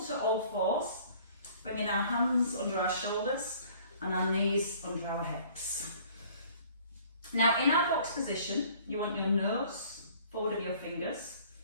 all fours, bringing our hands under our shoulders and our knees under our hips. Now in our box position, you want your nose forward of your fingers.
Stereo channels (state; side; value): inverted; both; correlation -0.54